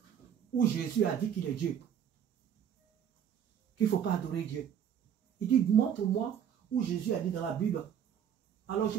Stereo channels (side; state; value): left; quieter; 8.9 dB